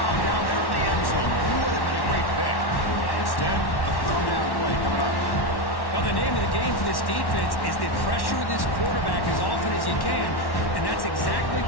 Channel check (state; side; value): late; right; 1.1 ms